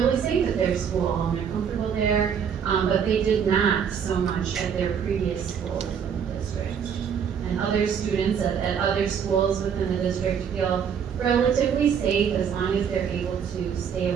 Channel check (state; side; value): quieter; left; 7.5 dB